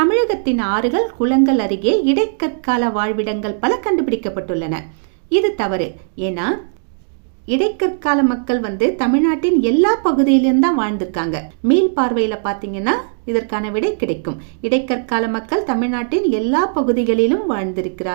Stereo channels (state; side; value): silent; left; digital silence